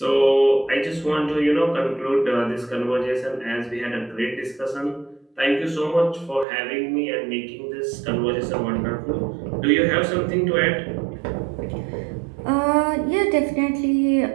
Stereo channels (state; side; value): drops out; left; at 6.5 s